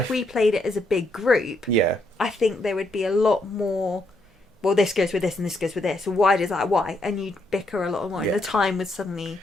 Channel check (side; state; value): both; normal; correlation 0.77